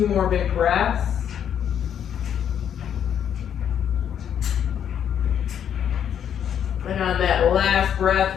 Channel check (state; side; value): quieter; right; 9.0 dB